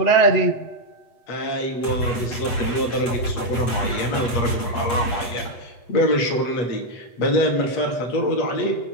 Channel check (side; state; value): right; late; 8.1 ms